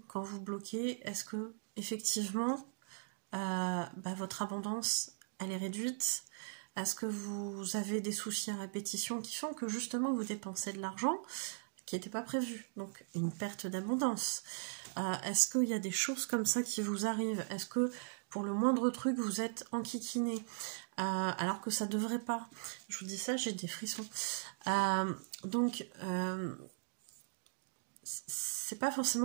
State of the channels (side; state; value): left; silent; digital silence